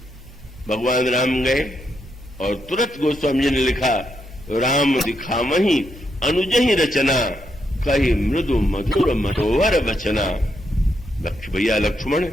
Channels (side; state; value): both; normal; correlation 0.80